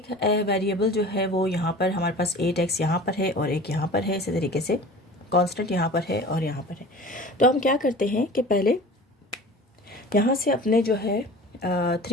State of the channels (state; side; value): normal; both; correlation 0.40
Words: वेरिएबल जो है वो यहाँ पर हमारे पास 8x यहाँ पर है और एक यहाँ पर है, इसी तरीके से कांस्टेंट यहाँ पर है और यहाँ पर है। तो हम क्या करते हैं कि पहले यहाँ से अपने जो है